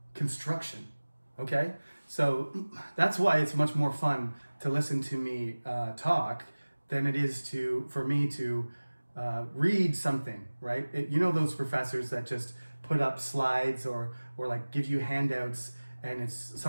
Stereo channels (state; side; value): inverted; both; correlation -1.00